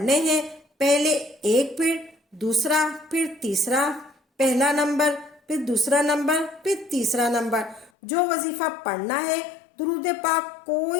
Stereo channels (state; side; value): drops out; right; at 7.9 s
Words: ہیں، پہلے ایک، پھر دوسرا، پھر تیسرا، پہلا نمبر، پھر دوسرا نمبر، پھر تیسرا نمبر، جو وظیفہ پڑھنا ہے درود پاک